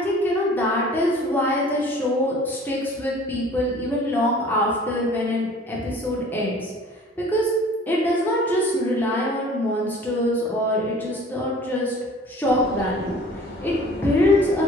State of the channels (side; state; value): both; normal; correlation 0.48